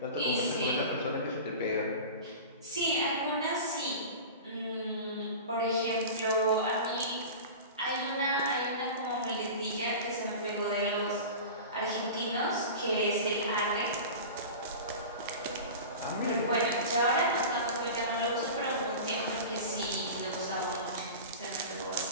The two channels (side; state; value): both; inverted; correlation -0.32